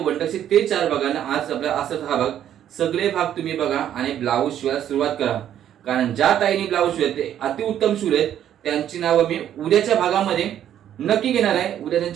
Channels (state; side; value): quieter; left; 10.6 dB